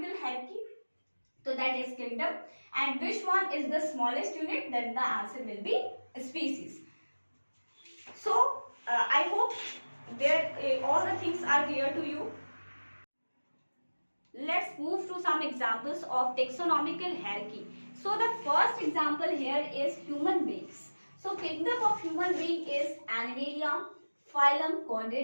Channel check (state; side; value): inverted; both; correlation -1.00